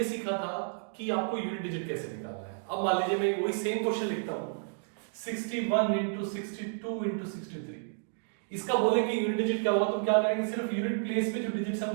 सीखा था कि आपको यूनिट डिजिट कैसे निकालना है। अब मान लीजिए मैं वही सेम क्वेश्चन लिखता हूँ 61 इंटू 62 इंटू 63। इसका बोले कि यूनिट डिजिट क्या होगा तो क्या करेंगे, सिर्फ यूनिट प्लेस पे जो डिजिट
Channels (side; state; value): left; silent; digital silence